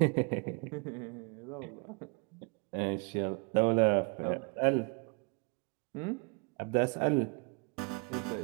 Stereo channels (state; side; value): quieter; left; 33.6 dB